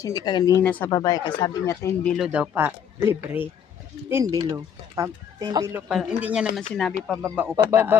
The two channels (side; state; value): right; quieter; 8.3 dB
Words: hindi kanina sa babae kasi sabi niya 10 bilo daw pa libre. 10 bilo. 10 bilo pa. Hindi niya naman sinabi pababa o pataas. Pababa